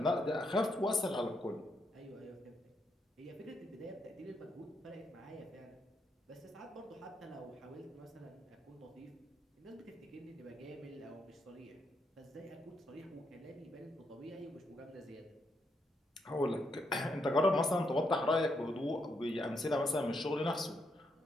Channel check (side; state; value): both; normal; correlation 0.78